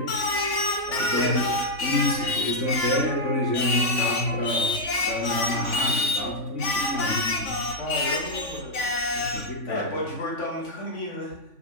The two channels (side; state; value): right; late; 3.5 ms